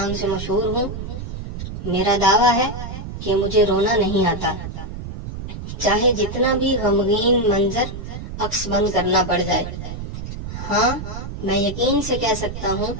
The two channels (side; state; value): right; noise; rumble, 8 dB below the sound